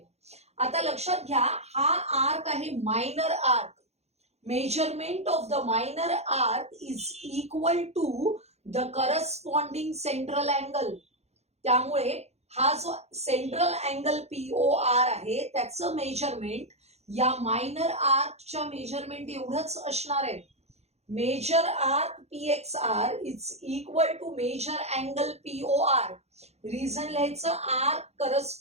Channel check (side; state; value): left; late; 0.31 ms